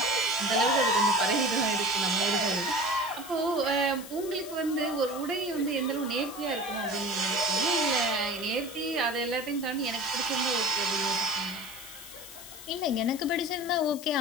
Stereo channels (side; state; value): left; noise; hiss, 14 dB below the sound